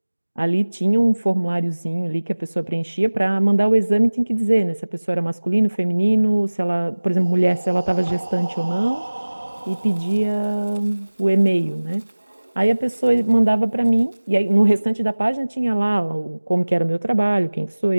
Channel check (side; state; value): both; inverted; correlation -1.00